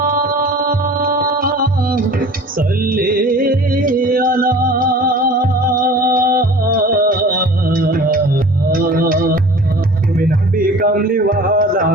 সাল্লে আলা। তুমি নবী কামলিওয়ালা,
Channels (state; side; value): normal; both; correlation 0.43